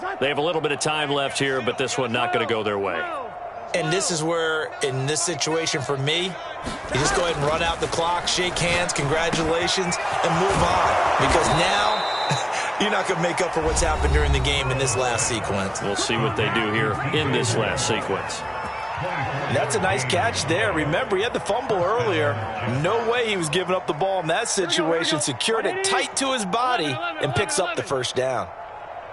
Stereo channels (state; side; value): identical; both; correlation 1.00